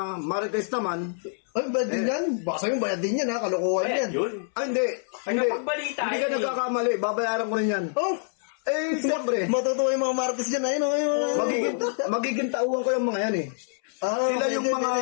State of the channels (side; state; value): right; silent; 61 dB below the other